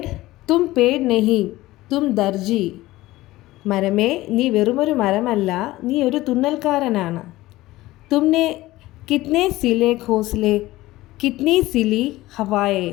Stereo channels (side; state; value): right; quieter; 17.6 dB